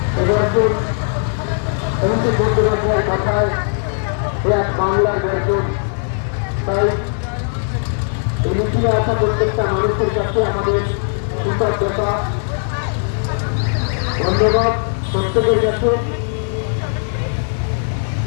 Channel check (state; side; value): silent; right; digital silence